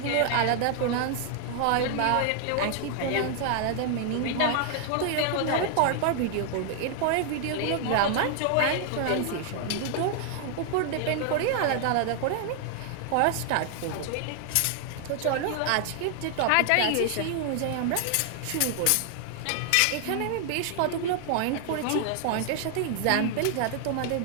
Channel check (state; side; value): different; both; correlation 0.00